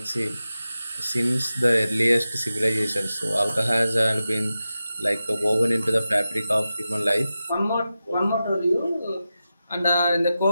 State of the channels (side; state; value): both; inverted; correlation -0.92